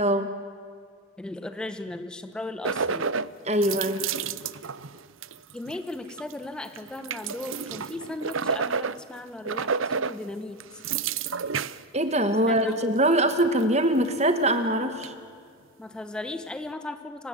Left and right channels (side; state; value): both; normal; correlation 0.17